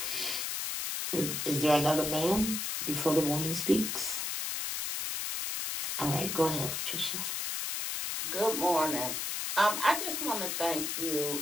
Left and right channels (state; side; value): noise; left; hiss, 2 dB below the sound